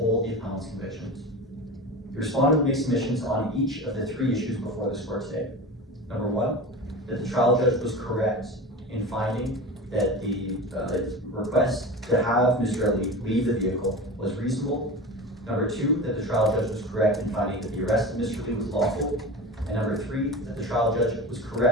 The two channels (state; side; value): normal; both; correlation 0.30